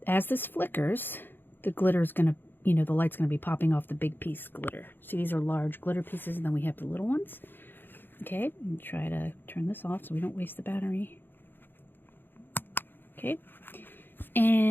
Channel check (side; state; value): right; late; 0.097 ms